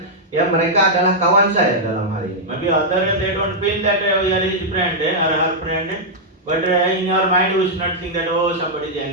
ya mereka adalah kawan saya dalam hal ini. Maybe other they don't feel that we are his friend or her friend, but in your mind we should not think that oh somebody is the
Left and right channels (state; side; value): normal; both; correlation -0.06